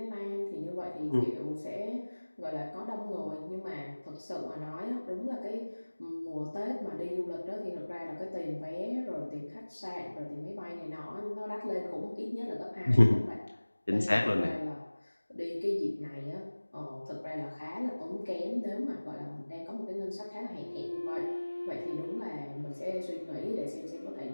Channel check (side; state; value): both; inverted; correlation -1.00